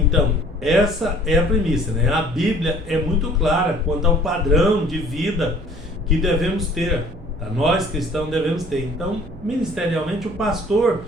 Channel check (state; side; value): noise; right; hum, 18 dB below the sound